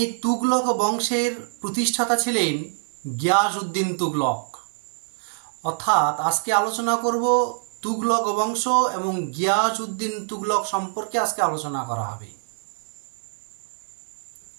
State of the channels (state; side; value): silent; left; digital silence